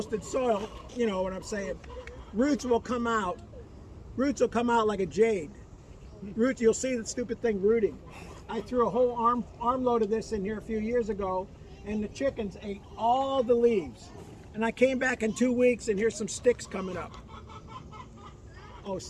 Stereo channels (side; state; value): both; identical; correlation 1.00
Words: soil, you know what I'm saying, roots will come out. Roots will come out like a jade. Roots, you'll see the stupid thing rooting. I threw a whole armload of this in here a few years ago, and the chickens ate all the leaves. And I came back in 2 weeks, and here's some sticks coming up. Oh,